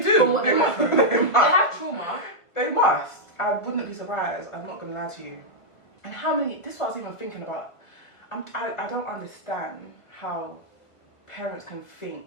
do. From what They must. they have trauma. They must. I wouldn't be surprised. I'm not going to lie to you. And how many... This is what I was even thinking about. I don't understand how parents can think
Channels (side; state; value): right; late; 1.5 ms